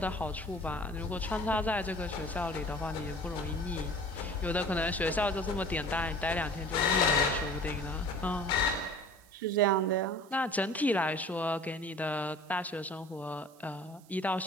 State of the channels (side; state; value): right; noise; hiss, 27 dB below the sound